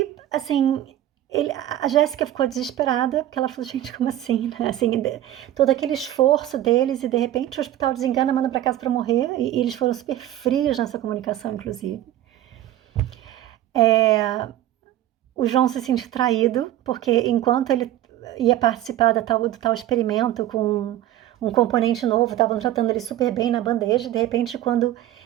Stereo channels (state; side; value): quieter; left; 13.1 dB